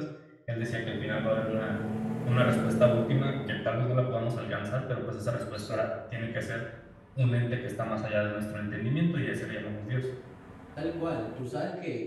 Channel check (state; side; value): identical; both; correlation 1.00